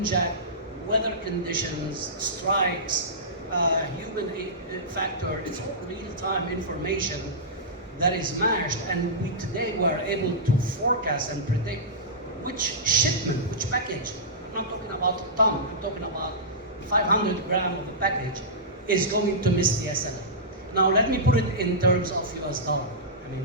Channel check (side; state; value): both; normal; correlation -0.16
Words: weather conditions, strikes, human factor. It's all real-time information that is matched, and we today were able to forecast and predict which shipment, which package. I'm not talking about a ton, I'm talking about 500 grams of a package is going to miss the SLA. Now let me put it in terms of US dollar, I